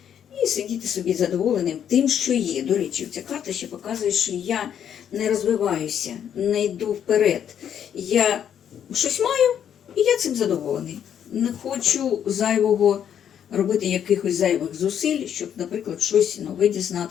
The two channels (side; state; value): right; quieter; 9.1 dB